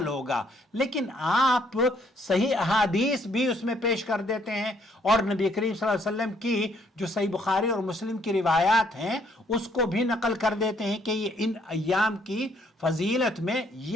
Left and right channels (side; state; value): both; normal; correlation 0.67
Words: ہوگا۔ لیکن آپ صحیح احادیث بھی اس میں پیش کر دیتے ہیں، اور نبی کریم صلی اللہ علیہ وسلم کی جو صحیح بخاری اور مسلم کی روایات ہیں اس کو بھی نقل کر دیتے ہیں کہ یہ ان ایام کی فضیلت میں